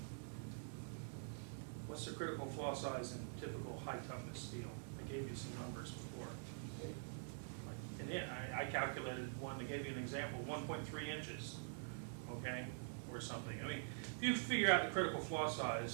What's the critical flaw size in typical high toughness steel? I gave you some numbers before. And I calculated one to give you an example, 1.3 inches, okay, or something. I mean, if you figure out the critical flaw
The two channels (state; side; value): silent; left; digital silence